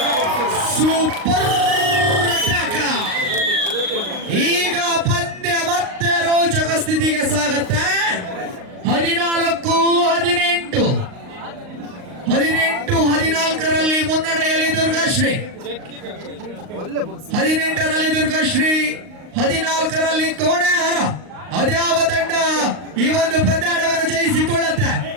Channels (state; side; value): late; left; 38 ms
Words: Super attack. ಈಗ ಪಂದ್ಯ ಮತ್ತೆ ರೋಚಕ ಸ್ಥಿತಿಗೆ ಸಾಗುತ್ತೆ. 14 ಮುನ್ನಡೆಯಲ್ಲಿ ದುರ್ಗಾಶ್ರೀ. 18ರಲ್ಲಿ ದುರ್ಗಾಶ್ರೀ, 14ರಲ್ಲಿ ಕೋಣೆಹಾರ. ಅದ್ಯಾವ ತಂಡ ಈ ಒಂದು ಪಂದ್ಯಾಟವನ್ನು ಜಯಿಸಿಕೊಳ್ಳುತ್ತೆ?